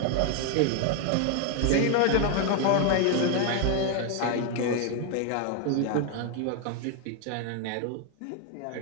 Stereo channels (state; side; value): different; both; correlation 0.01